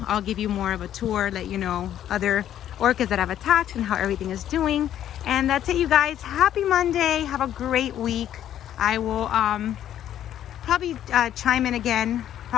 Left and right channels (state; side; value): quieter; right; 11.1 dB